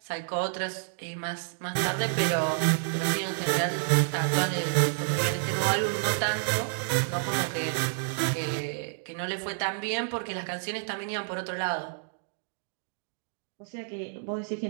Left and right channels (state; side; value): silent; left; digital silence